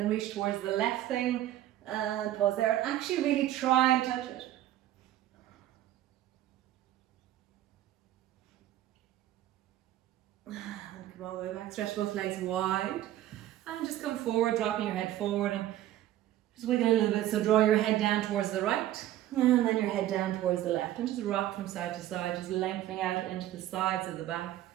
reach towards the left thing and pause there. And actually really try and touch it. And come all the way back. Stretch both legs wide. And just come forward, dropping your head forward. And just wiggle a little bit. So draw your head down towards the right. And then your head down towards the left. And just rock from side to side. Just lengthening out into the sides of the back.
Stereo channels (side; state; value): left; quieter; 13.3 dB